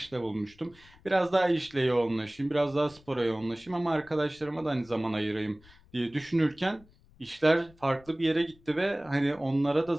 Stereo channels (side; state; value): left; noise; rumble, 26 dB below the sound